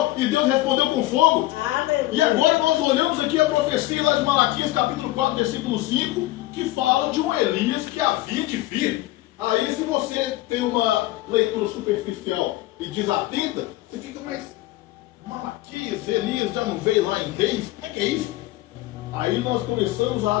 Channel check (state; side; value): quieter; right; 17.3 dB